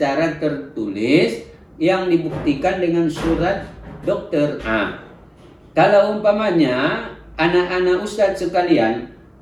tertulis yang dibuktikan dengan surat dokter. Kalau umpamanya anak-anak ustadz sekalian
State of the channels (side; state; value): both; identical; correlation 1.00